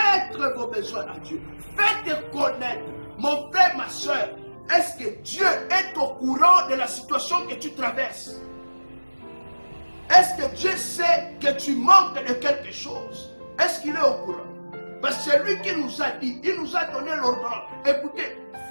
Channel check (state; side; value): inverted; both; correlation -1.00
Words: vos besoins à Dieu. Faites connaître. Mon frère, ma soeur, est-ce que Dieu est au courant de la situation que tu traverses? Est-ce que Dieu sait que tu manques de quelque chose? Est-ce qu'il est au courant? Parce que c'est lui qui nous a dit, il nous a donné l'ordonnance. Écoutez,